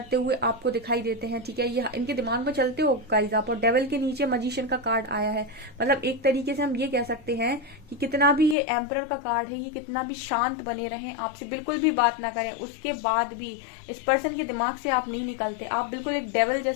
हुए आपको दिखाई देते हैं, ठीक है। ये इनके दिमाग में चलते हो गाइस आप। और डेविल के नीचे मैजिशियन का कार्ड आया है, मतलब एक तरीके से हम ये कह सकते हैं कि कितना भी ये एम्परर का कार्ड है, ये कितना भी शांत बने रहें, आपसे बिल्कुल भी बात ना करें, उसके बाद भी इस पर्सन के दिमाग से आप नहीं निकलते। आप बिल्कुल एक डेविल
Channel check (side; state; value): right; drops out; at 8.6 s